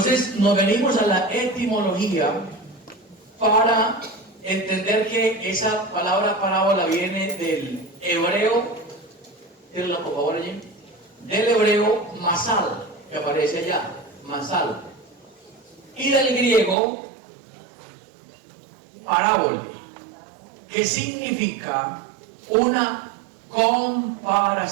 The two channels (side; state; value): left; drops out; at 16.8 s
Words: nos venimos a la etimología para entender que esa palabra parábola viene del hebreo, tírenla por favor allí, del hebreo masal, que aparece allá, masal, y del griego parábola, que significa una